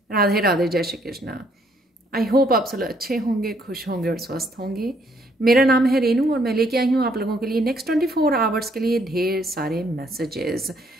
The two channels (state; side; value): normal; both; correlation 0.68